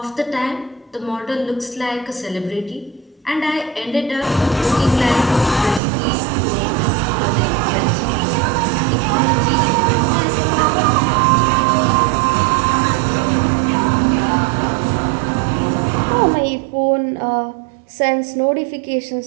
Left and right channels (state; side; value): drops out; left; at 5.8 s